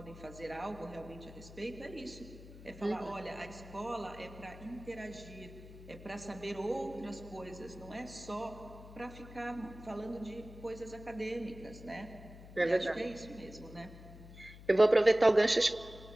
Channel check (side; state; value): left; noise; hum, 16 dB below the sound